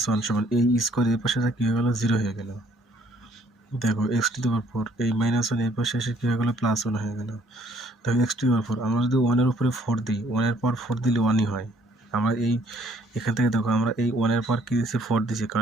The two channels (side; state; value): both; normal; correlation 0.62